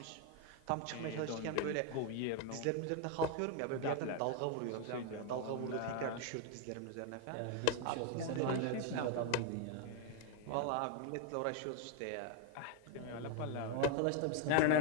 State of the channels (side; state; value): both; different; correlation 0.01